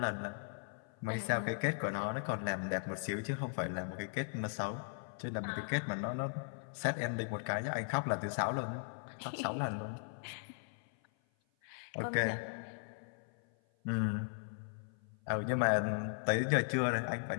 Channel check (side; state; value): right; silent; 53 dB below the other